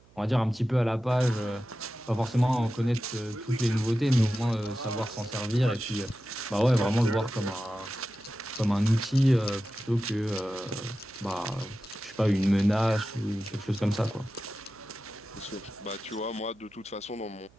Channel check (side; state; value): right; noise; hum, 28 dB below the sound